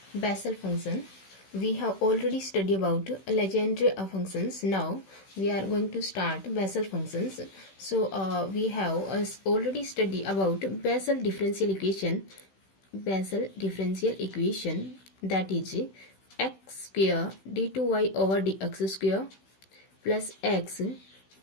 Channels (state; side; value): late; right; 16 ms